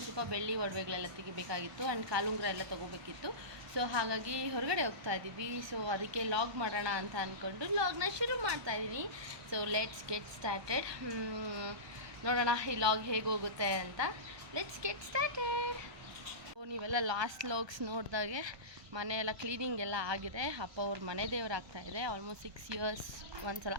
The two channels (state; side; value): late; left; 1.2 ms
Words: ಸ್ವಲ್ಪ ಬೆಳ್ಳಿ ಒಡವೆಗಳೆಲ್ಲ ತೆಗಿಬೇಕಾಗಿತ್ತು ಆ್ಯಂಡ್ ಕಾಲುಂಗ್ರ ಎಲ್ಲ ತೊಗೋಬೇಕಿತ್ತು. ಸೊ ಹಾಗಾಗಿ ಹೊರಗಡೆ ಹೋಗ್ತಾ ಇದ್ದೀವಿ. ಸೊ ಅದಕ್ಕೆ ಲಾಗ್ ಮಾಡೋಣ ಅಂತ ಅಂದ್ಕೊಂಡು ಲಾಗ್ನ ಶುರು ಮಾಡ್ತಾ ಇದ್ದೀನಿ. So let's get started. ನೋಡೋಣ ಈ ಲಾಗ್ ಹೇಗೆ ಹೋಗುತ್ತೆ ಅಂತ. Let's get started. ನೀವೆಲ್ಲ ಲಾಸ್ಟ್ ಲಾಗ್ಸ್ ನೋಡಿದಾಗೆ ಮನೆಯೆಲ್ಲ ಕ್ಲೀನಿಂಗ್ ಎಲ್ಲ ಆಗಿದೆ. ಅಪ್ಪ ಅವ್ರ ಮನೆ ದೇವ್ರು ಆಗ್ತಾಯಿದೆ. ಆಲ್ಮೋಸ್ಟ್ 6 ಇಯರ್ಸ್ ಒಂದ್ಸಲ,